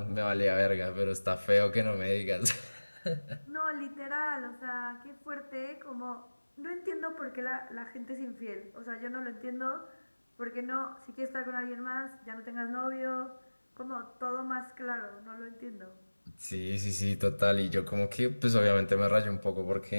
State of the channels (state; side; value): inverted; both; correlation -1.00